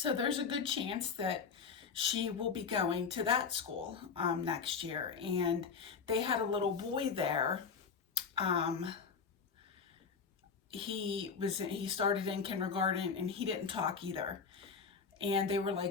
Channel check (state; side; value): quieter; right; 5.8 dB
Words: there's a good chance that she will be going to that school next year. And they had a little boy there. He started in kindergarten, and he didn't talk either. And they were